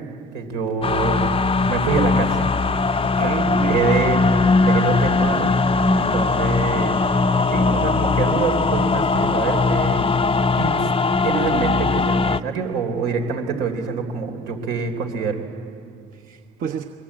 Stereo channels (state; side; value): normal; both; correlation 0.49